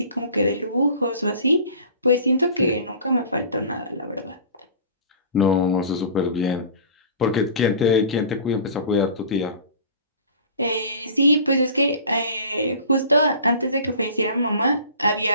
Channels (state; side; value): inverted; both; correlation -0.42